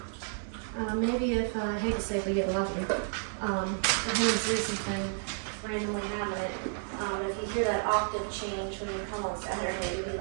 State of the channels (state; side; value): silent; left; 57 dB below the other